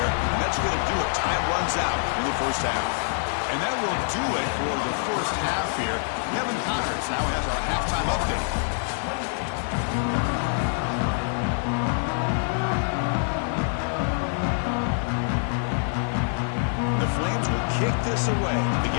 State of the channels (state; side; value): silent; right; 61 dB below the other